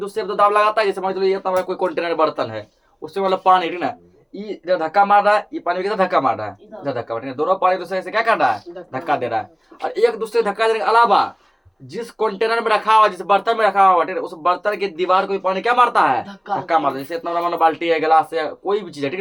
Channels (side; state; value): both; identical; correlation 1.00